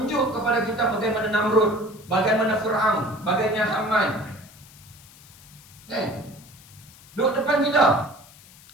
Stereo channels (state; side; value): noise; left; hiss, 23 dB below the sound